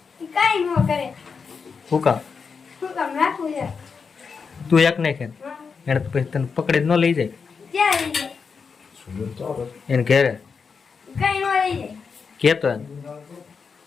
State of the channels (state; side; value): quieter; right; 5.5 dB